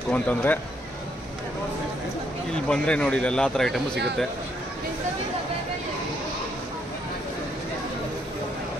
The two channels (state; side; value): normal; both; correlation 0.73